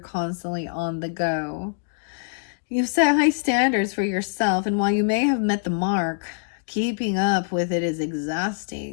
on the go. You've set high standards for yourself, and while you may have met the mark, keeping up with it is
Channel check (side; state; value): right; silent; digital silence